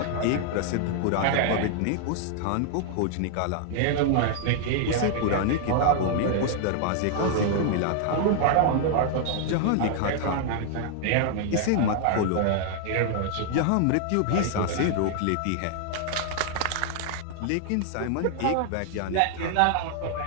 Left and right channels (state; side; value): different; both; correlation 0.00